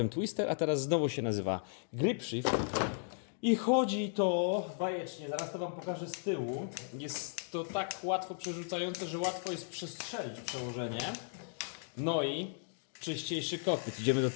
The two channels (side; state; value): right; silent; digital silence